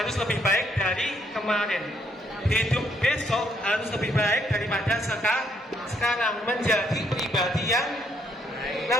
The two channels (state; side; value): normal; both; correlation 0.71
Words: lebih baik dari kemarin. Hidup besok harus lebih baik daripada sekarang, menjadi pribadi yang